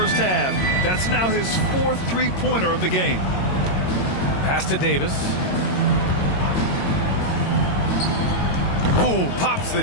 half. That's now his fourth three-pointer of the game. Pass to Davis. Ooh, pops the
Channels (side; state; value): right; late; 22 ms